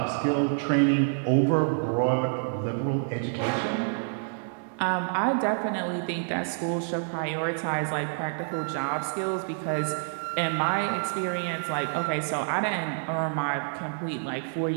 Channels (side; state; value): left; silent; digital silence